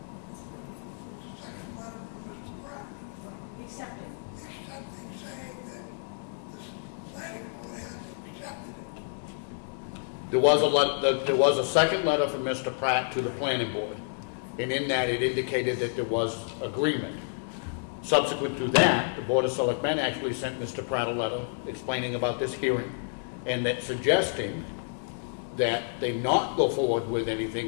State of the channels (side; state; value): right; silent; digital silence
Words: Second letter from Mr. Pratt. Accepting. Accepting, saying that the planning board has accepted it. There was a second letter from Mr. Pratt to the planning board, and in that it indicated that there was agreement. Subsequent to that, the Board of Selectmen actually sent Mr. Pratt a letter explaining about this hearing, and that suggesting that they not go forward with